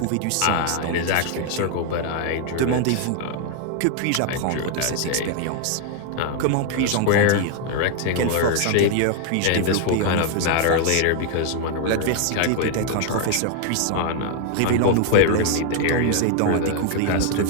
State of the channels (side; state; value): both; different; correlation 0.00